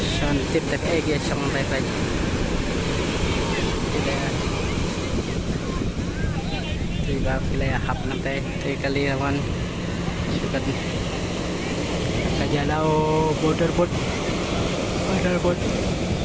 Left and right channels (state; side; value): identical; both; correlation 1.00